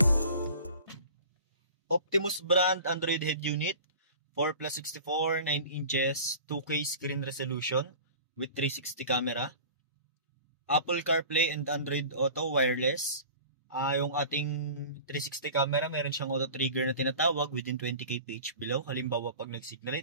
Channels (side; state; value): both; inverted; correlation -0.41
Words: Optimus brand Android head unit, 4+64, 9 inches, 2K screen resolution with 360 camera. Apple CarPlay and Android Auto wireless. Yung ating 360 camera, meron siyang auto trigger na tinatawag within 20 kph below. Halimbawa, pag nag-signal